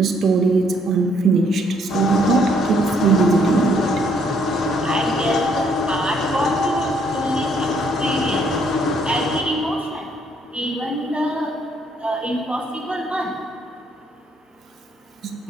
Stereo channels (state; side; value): normal; both; correlation 0.68